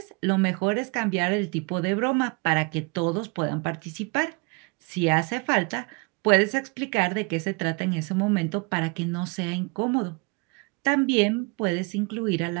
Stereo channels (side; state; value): left; quieter; 29.3 dB